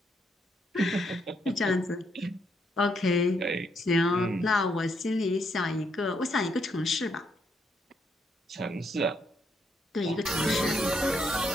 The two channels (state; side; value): normal; both; correlation 0.75